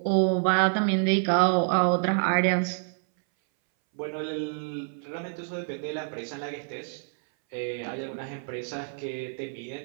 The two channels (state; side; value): silent; left; 60 dB below the other